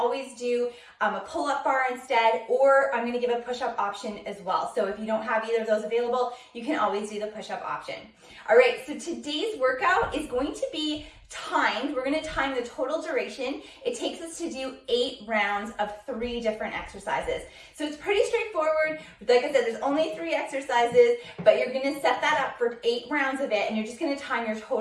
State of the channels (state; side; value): identical; both; correlation 1.00